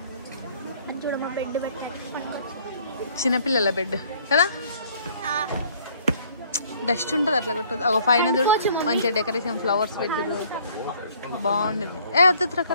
చిన్నపిల్లల బెడ్ కదా. డస్ట్ ఉంటుంది అట్లా కొట్టదు. ఒక పైన చూడు మంచిగా డెకరేషన్ ఫ్లవర్స్ పెట్టిరు, బాగుండేది. వద్దు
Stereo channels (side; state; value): both; inverted; correlation -0.59